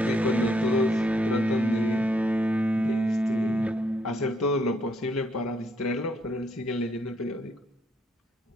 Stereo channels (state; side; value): normal; both; correlation 0.72